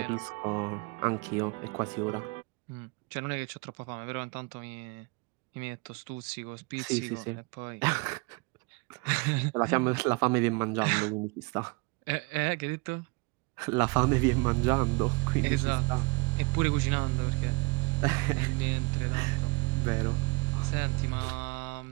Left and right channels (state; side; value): quieter; left; 28.6 dB